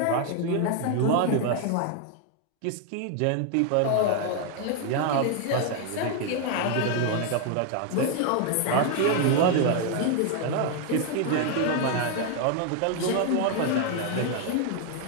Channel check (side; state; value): both; different; correlation 0.00